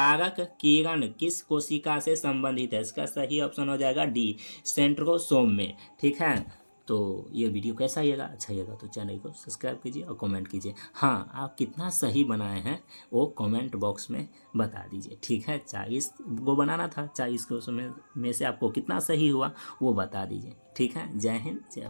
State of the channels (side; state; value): both; inverted; correlation -1.00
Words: किरण किस कोशिका से संबंधित है, इसका सही ऑप्शन हो जाएगा डी, सेंट्रोसोम में। ठीक है। तो ये वीडियो कैसा लगेगा, अच्छा लगेगा तो चैनल को सब्सक्राइब कीजिए और कमेंट कीजिए। हाँ, आप कितना सही बनाए हैं वो कमेंट बॉक्स में बता दीजिए। ठीक है। 40 को बनाना था, 40 को में से आपको कितना सही हुआ वो बता दीजिए। ठीक है। जय हिंद, जय